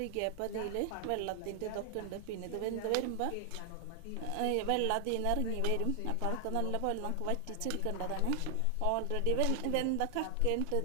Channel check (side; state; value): both; different; correlation 0.00